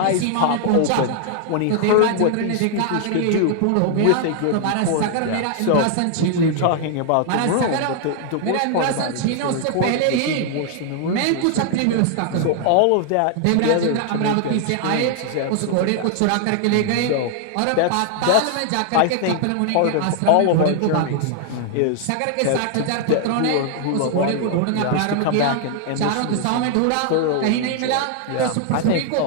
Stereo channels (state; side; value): different; both; correlation 0.00